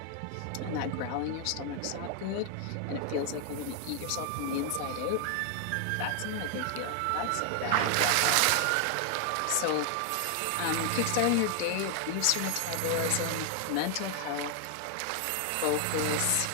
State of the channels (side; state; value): both; different; correlation 0.00